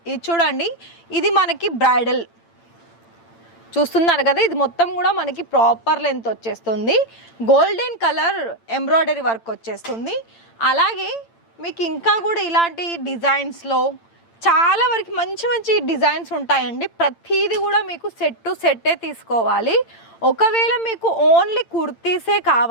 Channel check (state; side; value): late; right; 8.8 ms